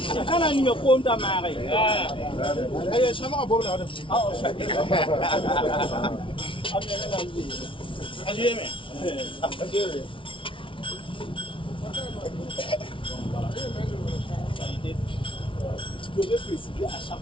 Kana ni me ko nda mare. Ay sama bo la. Ajeme. Je devais préciser à chaque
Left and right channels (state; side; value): late; right; 0.25 ms